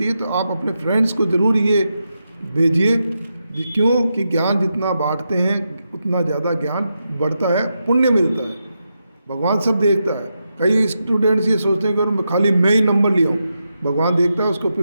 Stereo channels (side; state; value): both; inverted; correlation -0.86